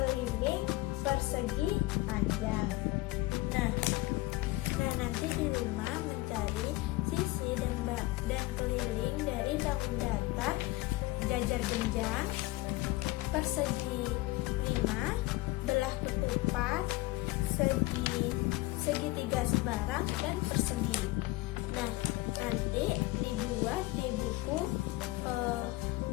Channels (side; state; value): right; quieter; 19.8 dB